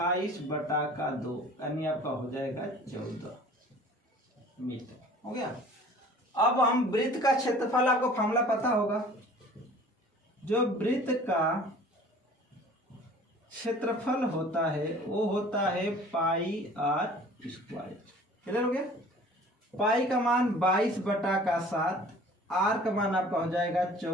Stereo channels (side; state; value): both; normal; correlation 0.48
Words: यानी आपका हो जाएगा 14 मीटर, हो गया। अब हम वृत्त का क्षेत्रफल, आपको फॉर्मूला पता होगा, जो वृत्त का क्षेत्रफल होता है वो होता है πr²। क्लियर हो गया। पाई का मान 22/7, आर का मान आपका हो जाएगा